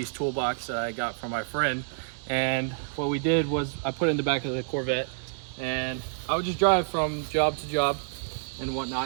toolbox that I got from my friend. And what we did was I put it in the back of the Corvette, and I would just drive from job to job and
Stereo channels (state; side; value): silent; left; digital silence